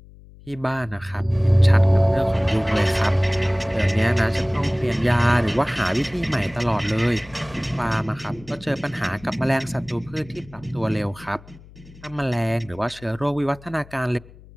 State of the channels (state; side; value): noise; left; hum, 22 dB below the sound